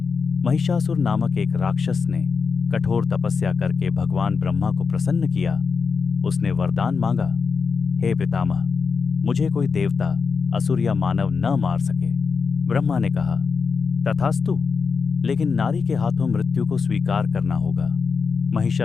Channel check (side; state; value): right; quieter; 5.2 dB